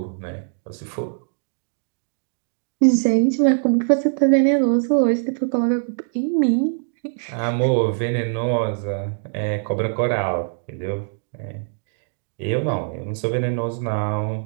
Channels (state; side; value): silent; left; digital silence